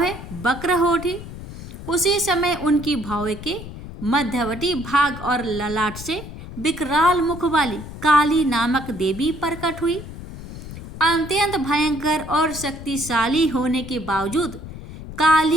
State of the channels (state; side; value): noise; left; rumble, 12 dB below the sound